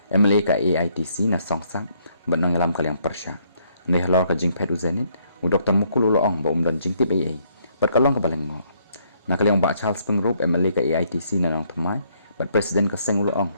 MLA ka AITC na songsak benang alam kaliang persya ne halor ka jing pet u zenit u Dr. Mukul uloong ba dan jing tip AA bat kalong ka baleng ngo na kaliang ba Charles Pengrop MLA ka AITC na nang thamai bat presiden ka seng uloong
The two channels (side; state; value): both; inverted; correlation -0.69